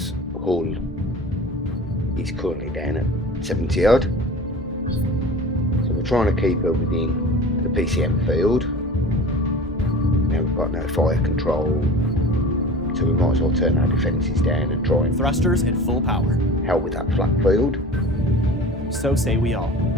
hull is currently down at 70 odd. So we're trying to keep her within the PCM field. Now we've got no fire control, so we might as well turn our defences down and try and Thrusters at full power. help with that flat field. So say we all.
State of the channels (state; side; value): normal; both; correlation 0.38